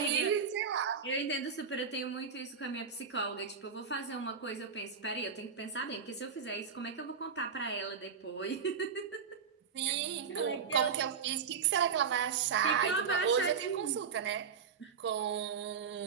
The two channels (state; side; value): quieter; left; 6.3 dB